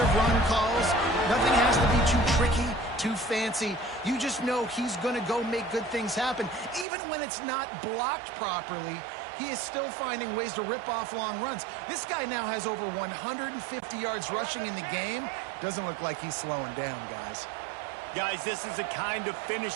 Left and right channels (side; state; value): left; drops out; at 6.9 s